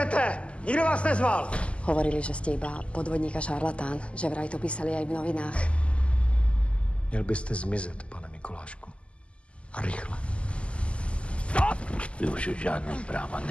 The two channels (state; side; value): late; right; 0.056 ms